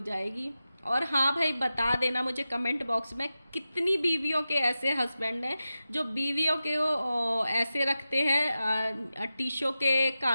जाएगी। और हाँ भाई, बता देना मुझे कमेंट बॉक्स में कितनी बीवियों के ऐसे हस्बैंड हैं जो बीवियों के वो ऐसे रखते हैं टीशो के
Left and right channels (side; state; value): both; inverted; correlation -0.92